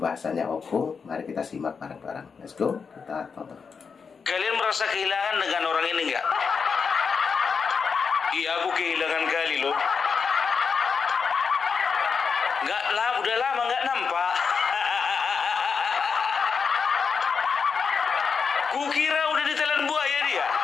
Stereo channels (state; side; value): quieter; right; 5.7 dB